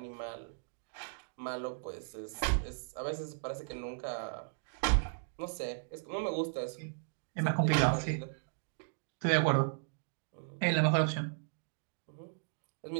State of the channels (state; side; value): silent; left; digital silence